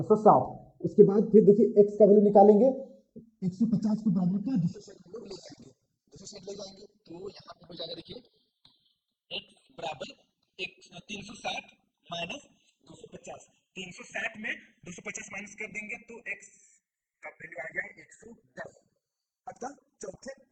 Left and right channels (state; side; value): identical; both; correlation 1.00